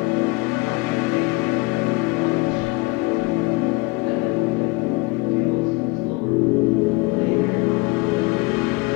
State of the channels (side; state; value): right; quieter; 24.2 dB